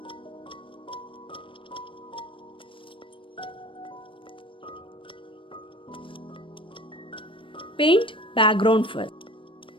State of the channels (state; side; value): late; right; 0.25 ms